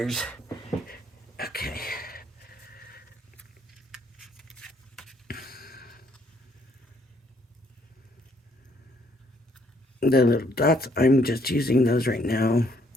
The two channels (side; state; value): both; normal; correlation 0.67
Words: Okay. the little dots, I'm just using those right now